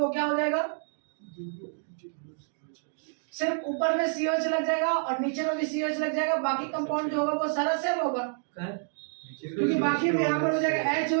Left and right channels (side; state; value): left; silent; digital silence